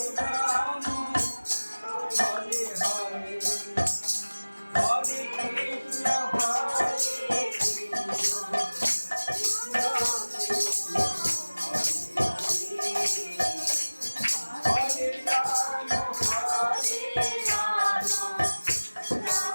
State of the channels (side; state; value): both; inverted; correlation -1.00